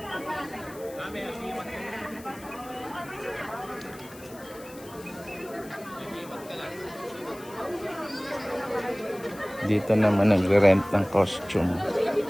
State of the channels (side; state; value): left; noise; hiss, 20 dB below the sound